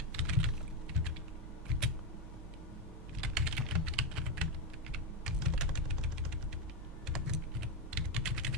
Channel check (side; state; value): both; normal; correlation 0.07